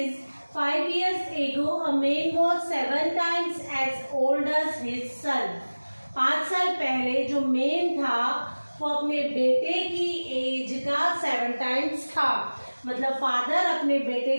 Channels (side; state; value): both; inverted; correlation -1.00